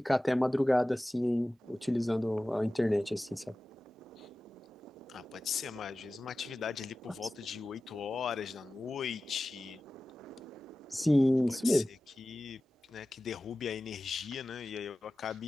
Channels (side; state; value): both; normal; correlation 0.96